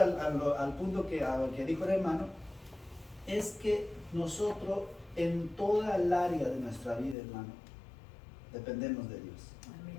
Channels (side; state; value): right; drops out; at 7.2 s